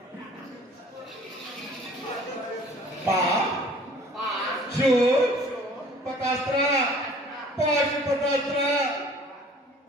ಶು ಪತಾಸ್ತ್ರ ಪಾಶುಪತಾಸ್ತ್ರ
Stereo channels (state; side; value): normal; both; correlation 0.51